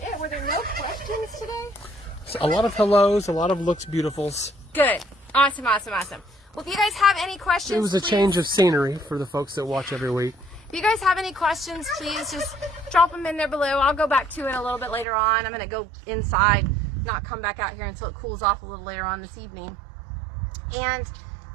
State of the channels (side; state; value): left; drops out; at 15.1 s